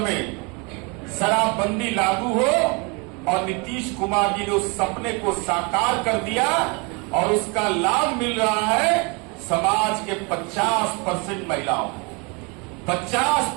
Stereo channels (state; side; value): quieter; left; 30.6 dB